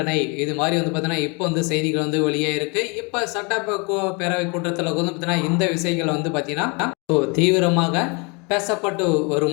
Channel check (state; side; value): quieter; right; 31.5 dB